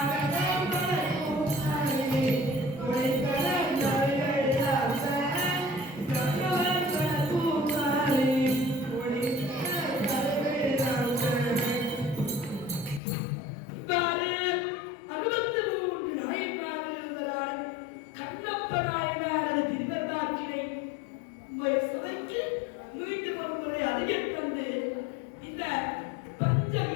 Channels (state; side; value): drops out; right; at 13.0 s